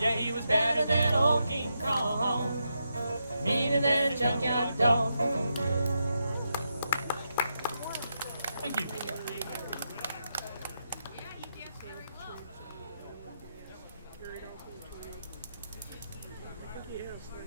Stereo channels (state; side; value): inverted; both; correlation -0.84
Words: he was badder than old King Kong, meaner than a junkyard dog. Thank you. carried off with the I think he has